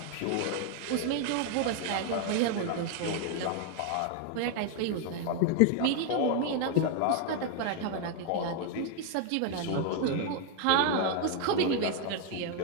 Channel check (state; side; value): different; both; correlation 0.00